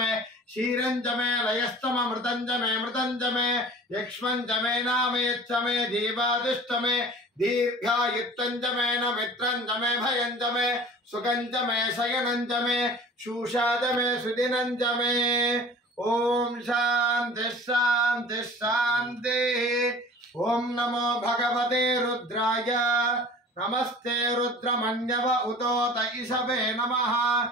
शीरंचमे लयस्तमे मृतंचमे यक्ष्मंचमे नामयच्चमे जीवादिष्टमे दीर्घायुत्तंचमे न मित्रंचमे भयंचमे सुखंचमे शयनंचमे शूषाचमे सुदिनंचमे। ओम शांति शांति शांति। ओम नमो भगवते रुद्राय नमस्ते रुद्रमन्यव उतोत ईशवे नमः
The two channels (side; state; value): both; normal; correlation 0.43